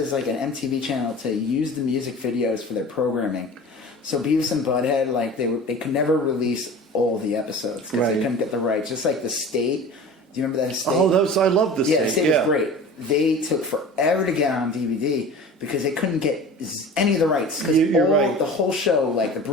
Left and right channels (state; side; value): normal; both; correlation 0.38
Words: like an MTV channel to use the music videos for their programming. So Beavis and Butthead, like they could never release all the episodes because they couldn't get the rights. Just like The State. Do you remember that State? Oh, I love The State. Yeah, The State was great. They took forever to get on DVD because they couldn't get any of the rights. Because the whole show, like The